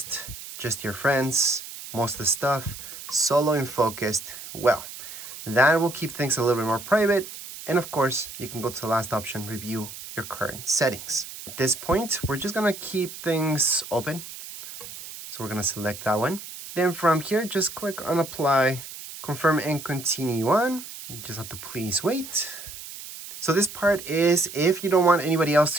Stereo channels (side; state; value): right; noise; hiss, 12 dB below the sound